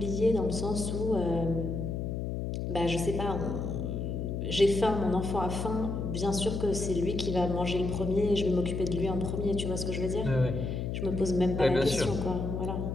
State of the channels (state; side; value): noise; left; hum, 3 dB below the sound